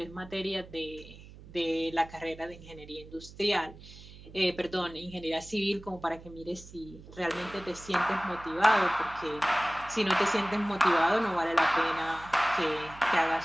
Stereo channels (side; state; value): right; noise; hum, 18 dB below the sound